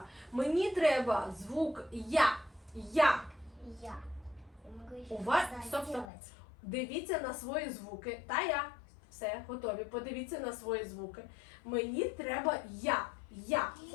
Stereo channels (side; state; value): right; drops out; at 6.1 s